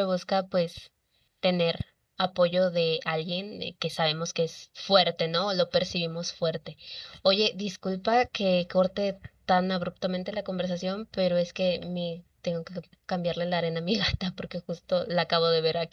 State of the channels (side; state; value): both; identical; correlation 1.00